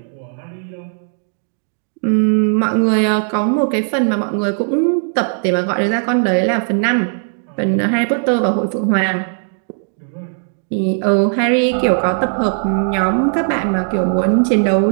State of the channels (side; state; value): left; silent; digital silence